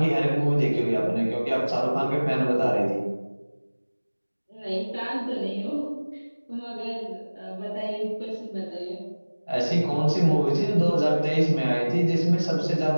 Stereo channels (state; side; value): inverted; both; correlation -1.00